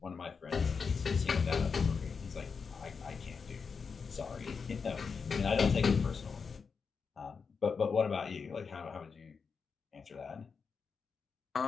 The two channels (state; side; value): quieter; right; 5.5 dB